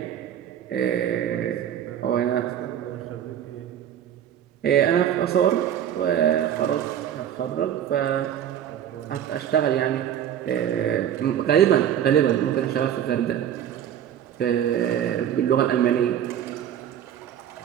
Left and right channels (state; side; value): quieter; left; 10.1 dB